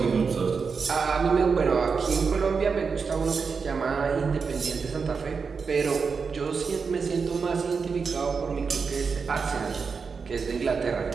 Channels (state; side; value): quieter; left; 5.3 dB